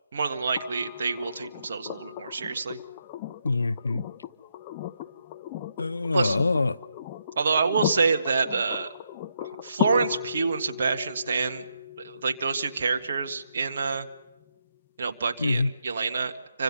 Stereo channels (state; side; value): inverted; both; correlation -0.79